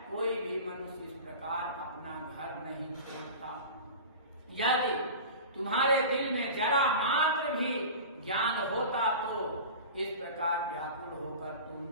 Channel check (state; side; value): inverted; both; correlation -0.34